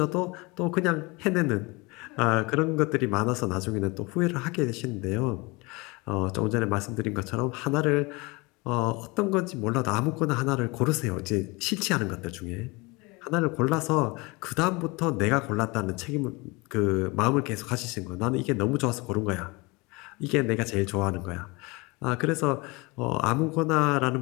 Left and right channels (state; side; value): quieter; right; 25.7 dB